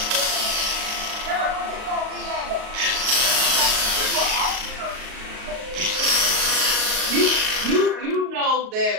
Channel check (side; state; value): left; late; 38 ms